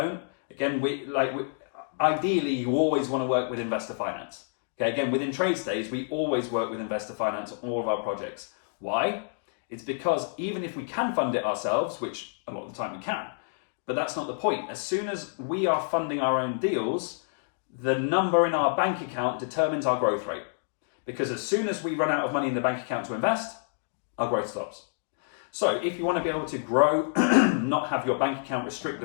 Again, ideally, you always want to work with investor finance. Okay, again, within TradeStays, we always work with investor finance on all of our projects. Why? It's because even if we can fund it ourselves, which a lot of the time we can, but that's not the point. As soon as we are funding our own deals, the number in our bank account determines our growth rate. Because as soon as we run out of money in the bank account to invest, our growth stops. So if you want to be able to grow, not have your bank account restrict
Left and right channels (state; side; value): silent; right; digital silence